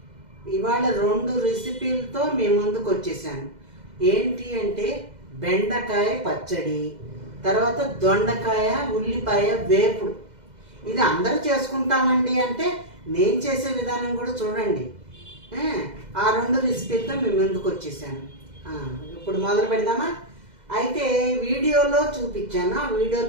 ఇవాళ 2 రెసిపీలతో మీ ముందుకు వచ్చేసాను. ఏంటి అంటే బెండకాయ పచ్చడి, తర్వాత దొండకాయ ఉల్లిపాయ వేపుడు. ఇది అందరూ చేసుకుంటామండి అంటే నేను చేసే విధానం కూడా చూడండి. ఆ 2 రెసిపీలతో మీ ముందుకు వచ్చేసాను. ఇప్పుడు మొదలు పెడదామా? అయితే వీడియోలో చూపించాను, ఆ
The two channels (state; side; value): late; left; 2.0 ms